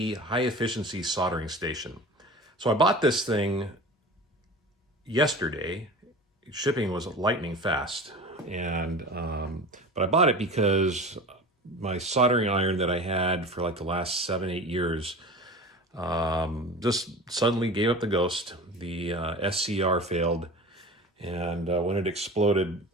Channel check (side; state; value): both; normal; correlation 0.35